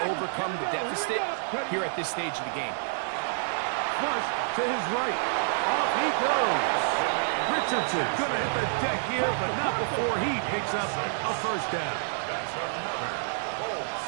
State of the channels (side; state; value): left; silent; digital silence